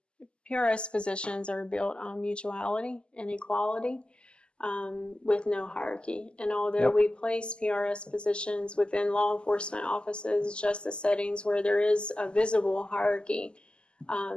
positions are built on mutuality and equality, with no hierarchy. And although we place PRS positions within law enforcement offices, justice settings where there is a visible hierarchy,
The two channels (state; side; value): late; right; 0.050 ms